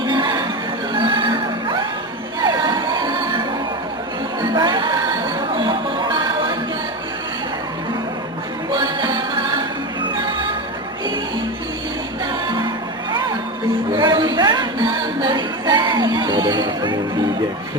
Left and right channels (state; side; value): normal; both; correlation 0.20